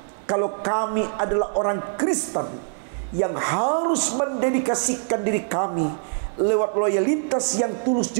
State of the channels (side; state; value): left; silent; 63 dB below the other